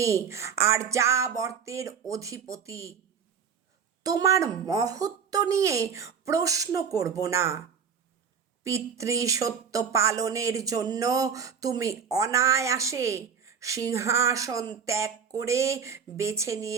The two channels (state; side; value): quieter; left; 7.0 dB